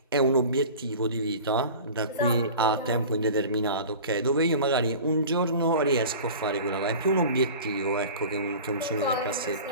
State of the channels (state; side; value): inverted; both; correlation -0.38